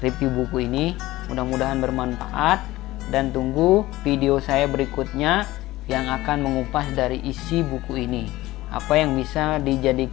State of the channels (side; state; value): right; quieter; 17.5 dB